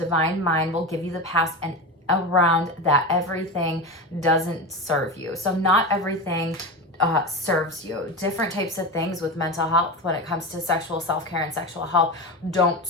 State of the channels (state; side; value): normal; both; correlation 0.22